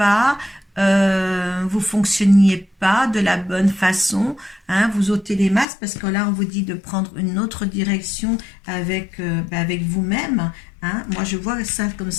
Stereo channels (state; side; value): drops out; right; at 5.7 s